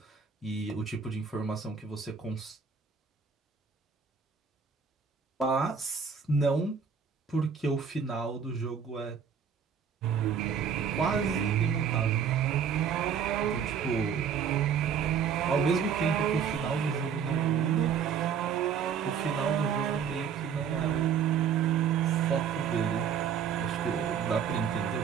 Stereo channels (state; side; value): quieter; left; 7.1 dB